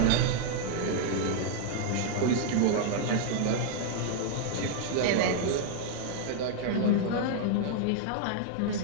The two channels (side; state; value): both; different; correlation 0.00